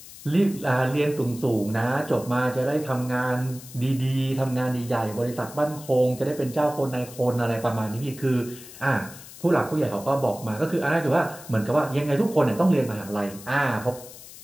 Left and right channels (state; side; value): noise; left; hiss, 17 dB below the sound